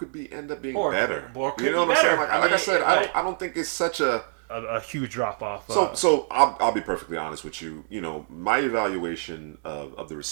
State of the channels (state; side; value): silent; left; 60 dB below the other